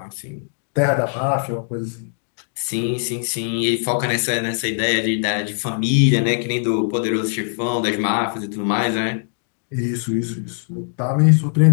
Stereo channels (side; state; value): right; silent; digital silence